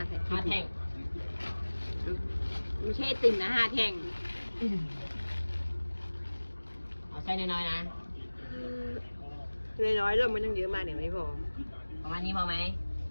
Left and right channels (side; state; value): both; inverted; correlation -1.00